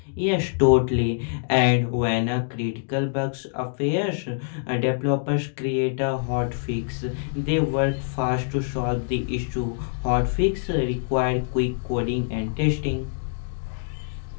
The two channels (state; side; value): silent; right; digital silence